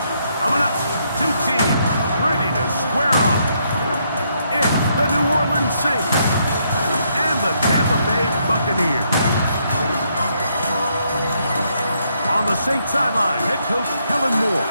Coming up, two teams ready to square off. It's the New Orleans Saints and the Tampa Bay Buccaneers. On the Saints sideline, head coach Kellen Moore.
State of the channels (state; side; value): inverted; both; correlation -0.74